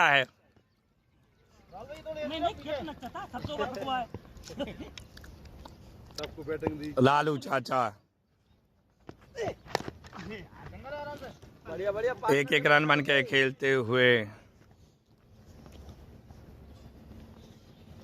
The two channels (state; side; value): identical; both; correlation 1.00